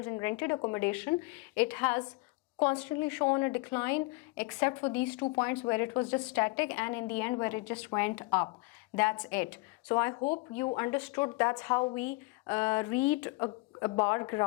in rented accommodation, it has constantly shown a decline except for these 2 points where it was just static, and in the end where it just went up. That's it. So I hope you understood that's how we read a bar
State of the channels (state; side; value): quieter; right; 25.1 dB